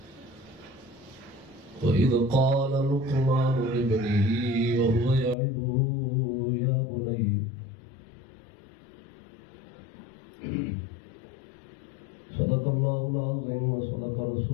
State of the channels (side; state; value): right; drops out; at 5.4 s